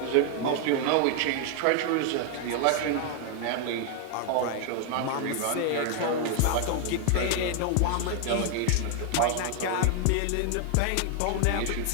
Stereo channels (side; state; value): both; different; correlation 0.00